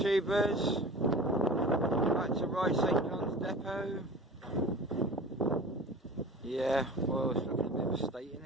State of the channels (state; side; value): normal; both; correlation 0.40